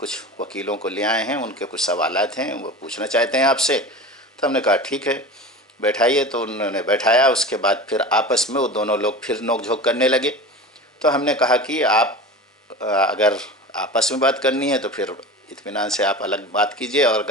وکیلوں کو لے آئے ہیں، ان کے کچھ سوالات ہیں، وہ پوچھنا چاہتے ہیں آپ سے۔ تو ہم نے کہا ٹھیک ہے بیٹھائیے، تو انہوں نے بیٹھایا۔ اس کے بعد پھر آپس میں وہ دونوں لوگ پھر نوک جھونک کرنے لگے۔ تو ہم نے کہا کہ آپ اگر آپس میں بات کرنی ہے تو پھر اطمینان سے آپ الگ بات کیجئے، اور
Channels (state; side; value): normal; both; correlation 0.33